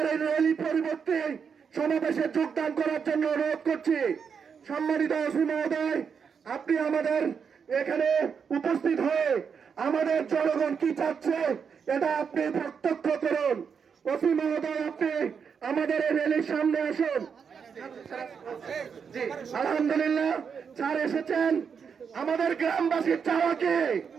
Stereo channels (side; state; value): left; quieter; 6.5 dB